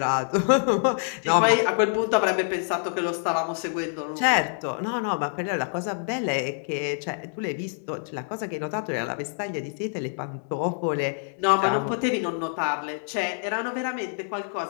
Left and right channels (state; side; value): silent; right; digital silence